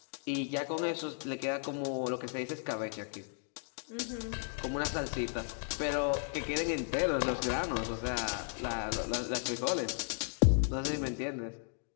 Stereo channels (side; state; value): right; silent; 54 dB below the other